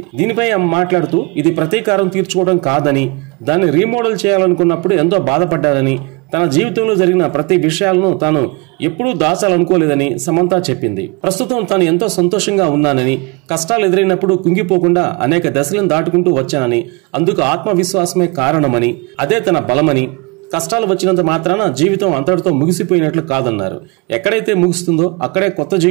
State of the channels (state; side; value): quieter; left; 28.9 dB